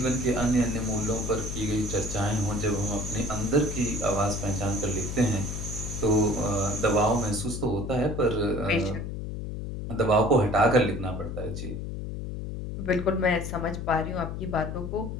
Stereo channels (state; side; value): noise; left; hum, 6 dB below the sound